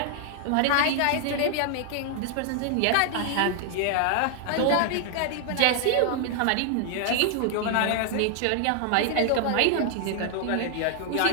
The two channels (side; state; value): both; different; correlation 0.00